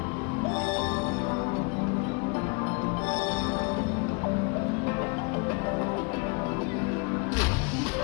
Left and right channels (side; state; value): right; quieter; 32.1 dB